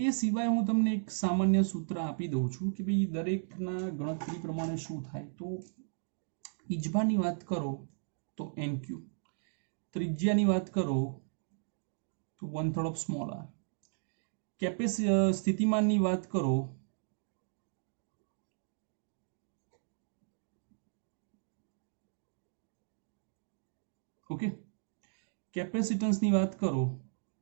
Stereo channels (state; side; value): silent; left; digital silence